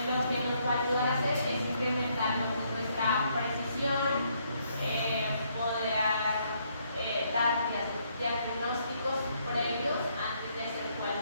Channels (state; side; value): inverted; both; correlation -0.72